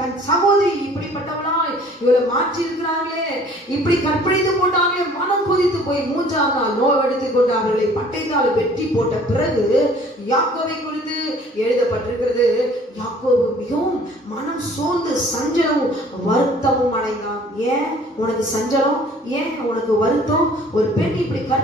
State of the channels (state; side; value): normal; both; correlation 0.53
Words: சகோதரி இப்படிப்பட்டவளாய் இவளை மாற்றி இருக்கிறார்களே, இப்படி கற்பழித்து போட்டாங்களே, மனம் கொதித்து போய் 3ஆம் நாள் நோவெடுத்துக் கொண்டு அவர்களை பட்டயத்தால் வெட்டி போட்ட பிறகு யாக்கோபை குறித்து எழுதப்பட்டிருக்கிறது. யாக்கோபு மிகவும் மனம் சோர்ந்து சஞ்சலமும் வருத்தமும் அடைந்தான். ஏன் உனக்கு சஞ்சலம்? ஏன் உனக்கு வருத்தம்? ஒரு பெண் இப்படி